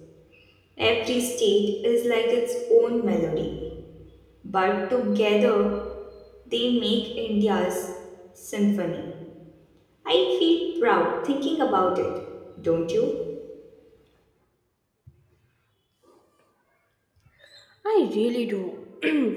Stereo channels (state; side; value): identical; both; correlation 1.00